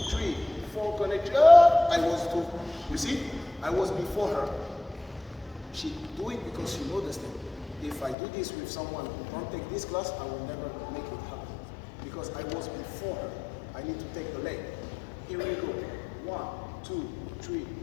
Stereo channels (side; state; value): right; drops out; at 8.2 s